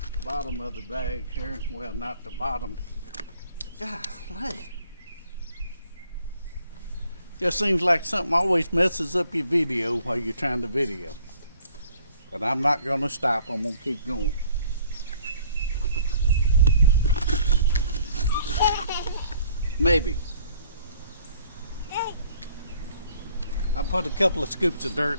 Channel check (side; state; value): both; inverted; correlation -0.58